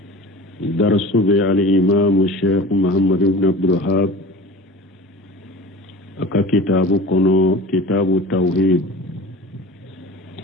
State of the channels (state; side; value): normal; both; correlation 0.37